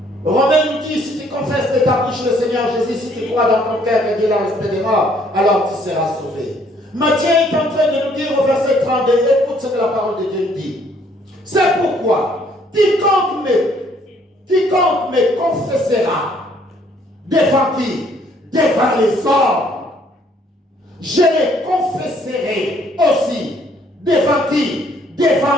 Romains nous dit, si tu confesses de ta bouche le Seigneur Jésus, si tu crois dans ton cœur que Dieu l'a resté des morts, alors tu seras sauvé. Matthieu est en train de nous dire au verset 32, écoute ce que la parole de Dieu nous dit. C'est pourquoi, quiconque me confessera, devant qui? Devant les hommes. Je les confesserai aussi. Devant qui?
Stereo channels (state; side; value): normal; both; correlation 0.64